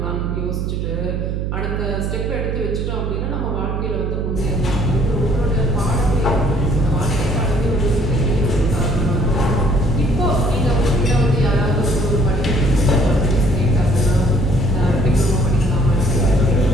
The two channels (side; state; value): right; noise; hum, 2 dB below the sound